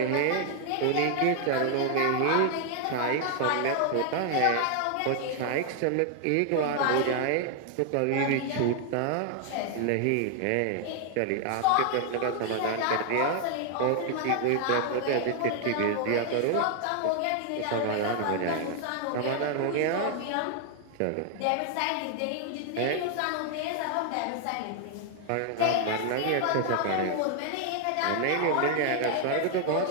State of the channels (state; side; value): different; both; correlation 0.00